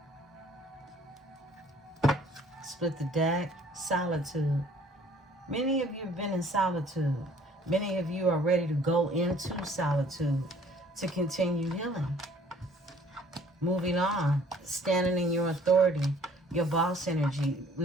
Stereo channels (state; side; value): normal; both; correlation 0.57